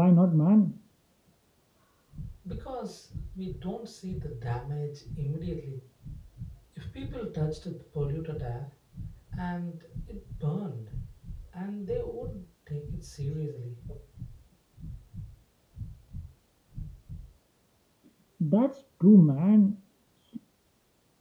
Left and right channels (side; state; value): both; identical; correlation 1.00